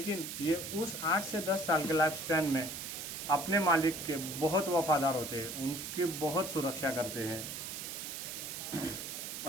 ये उस 8 से 10 साल के लाइफ स्पैन में अपने मालिक के बहुत वफादार होते हैं, उनकी बहुत सुरक्षा करते हैं।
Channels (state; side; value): noise; right; hiss, 7 dB below the sound